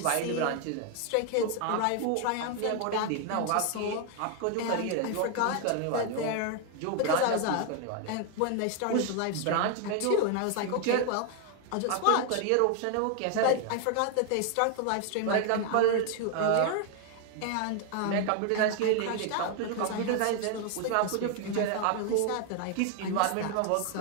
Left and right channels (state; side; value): different; both; correlation 0.00